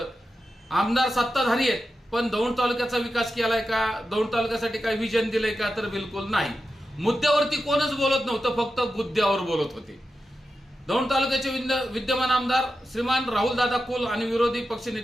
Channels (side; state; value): both; normal; correlation 0.90